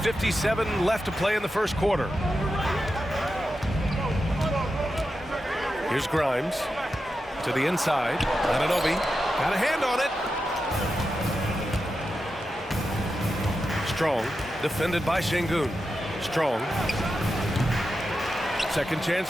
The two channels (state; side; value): normal; both; correlation 0.89